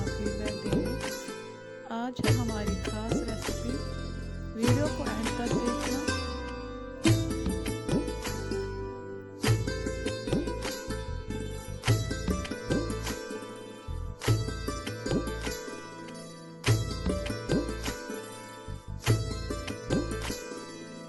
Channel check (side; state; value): both; identical; correlation 1.00